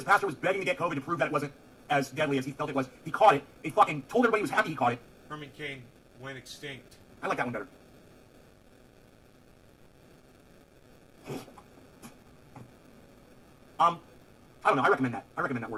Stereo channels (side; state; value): both; identical; correlation 1.00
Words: pastor was begging to get COVID to prove that it wasn't as deadly as he felt it was. He caught it. He fucking told everybody he was happy he caught it. Herman Cain went extinct. I like that one better. I don't know. I recommend that. I recommend that